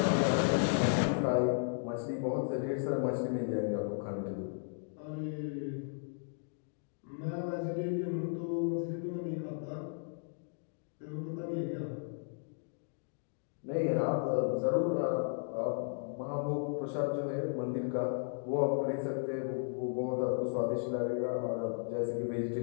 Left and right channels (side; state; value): right; silent; digital silence